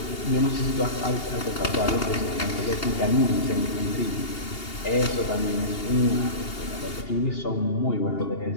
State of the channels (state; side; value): late; right; 2.8 ms